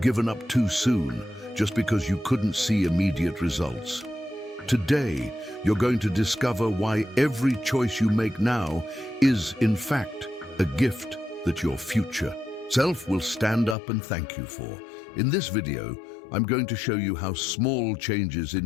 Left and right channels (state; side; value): drops out; right; at 13.8 s